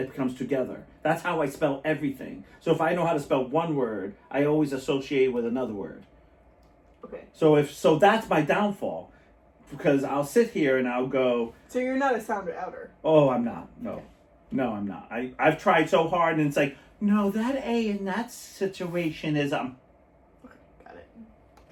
comes together. That's how I spell everything. So if I know how to spell one word, I always associate with another word. Okay. So that's my downfall, because I'll sit here and I'll go, So you're not a sounder outer. "Oh, I'm not. No, I'm not. I've tried so hard, and it's like, no, that A in that situation is Okay, got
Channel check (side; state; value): both; identical; correlation 1.00